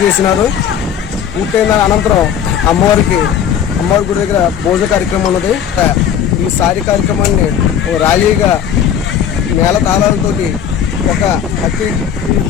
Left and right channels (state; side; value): quieter; right; 8.8 dB